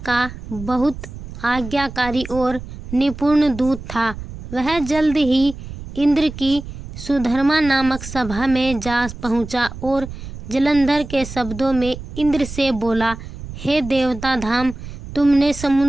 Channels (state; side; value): noise; right; rumble, 12 dB below the sound